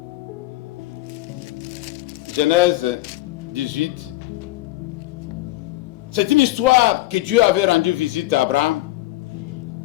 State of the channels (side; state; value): right; quieter; 17.5 dB